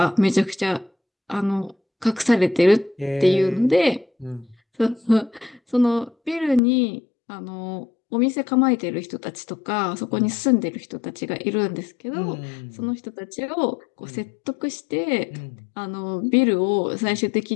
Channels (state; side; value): drops out; right; at 6.6 s